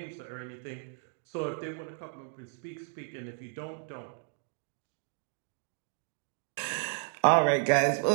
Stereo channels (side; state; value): left; silent; 56 dB below the other